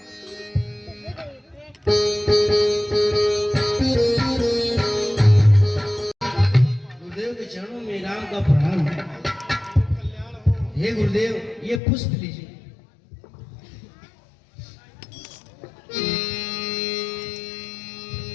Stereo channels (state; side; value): drops out; right; at 11.8 s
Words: गुरुदेव के चरणों में राम का प्रणाम। हे गुरुदेव, ये पुष्प लीजिए।